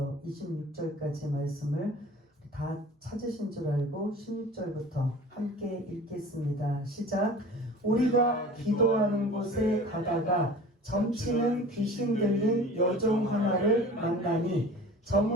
26절까지 말씀을 다 찾으신 줄 알고 16절부터 함께 읽겠습니다. 시작. 우리가 기도하는 곳에 가다가 점치는 귀신 들린 여종 하나를 만나니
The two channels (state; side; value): normal; both; correlation 0.41